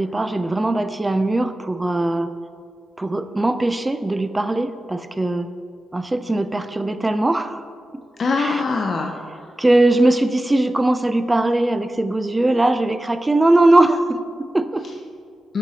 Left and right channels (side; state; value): both; normal; correlation 0.95